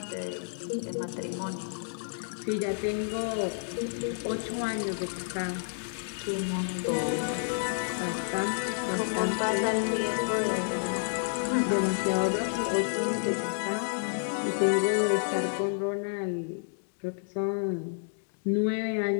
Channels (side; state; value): right; silent; digital silence